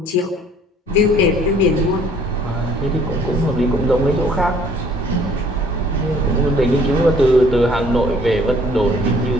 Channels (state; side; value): normal; both; correlation 0.57